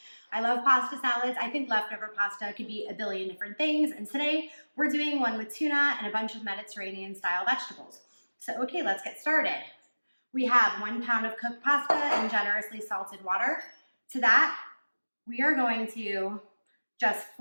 I love pasta salads. I think leftover pasta could be a billion different things, and today we're doing one with tuna and a bunch of Mediterranean style vegetables. So okay, let's get started. We have 1 pound of cooked pasta and generously salted water. To that, we are going to just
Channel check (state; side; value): inverted; both; correlation -1.00